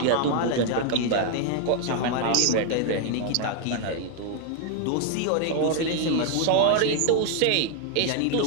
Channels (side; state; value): both; different; correlation 0.00